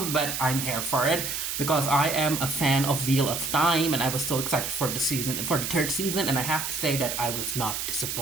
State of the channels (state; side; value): noise; right; hiss, 3 dB below the sound